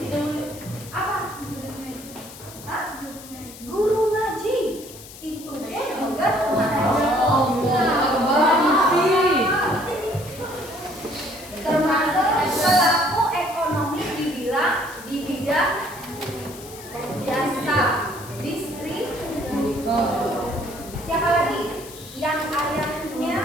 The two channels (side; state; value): left; noise; hiss, 16 dB below the sound